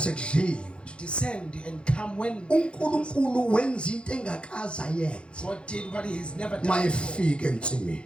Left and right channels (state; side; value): late; right; 0.056 ms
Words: to descend and come when uNkulunkulu wenza into engakaza yenza God did what he has never done before. mayefika ensimini.